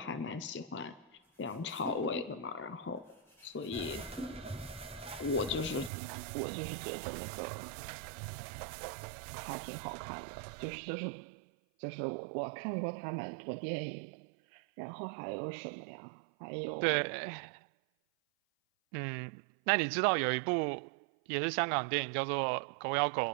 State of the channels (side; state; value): left; drops out; at 5.9 s